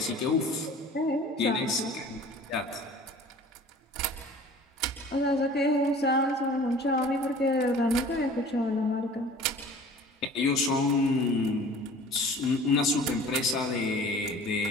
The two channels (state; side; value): normal; both; correlation 0.45